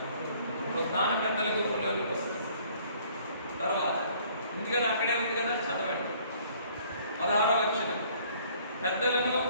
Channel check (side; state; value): both; inverted; correlation -0.58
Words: పునరుద్ధాన పెద్దల గుంపులోనికి వస్తున్నాను. తర్వాత ఉంది కదా, అక్కడే ఉంది కదా, చదవండి 16వ వచనం. పెద్దలను